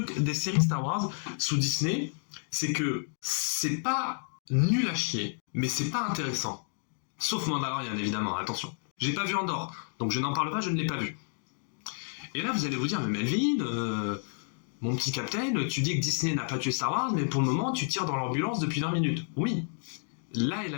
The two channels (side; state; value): right; silent; 56 dB below the other